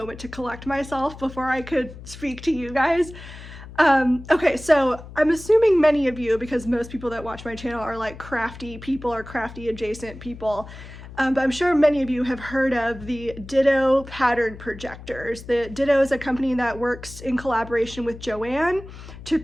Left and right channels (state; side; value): noise; left; hum, 15 dB below the sound